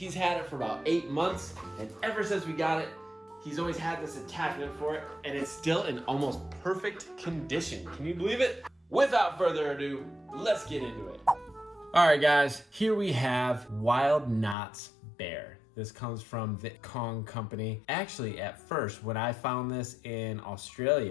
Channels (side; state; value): right; drops out; at 14.6 s